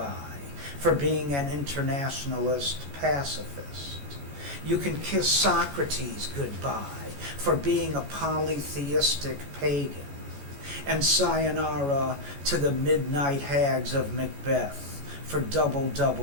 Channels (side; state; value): left; late; 14 ms